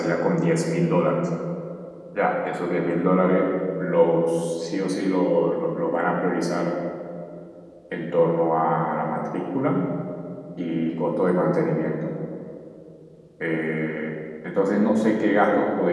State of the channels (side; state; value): both; identical; correlation 1.00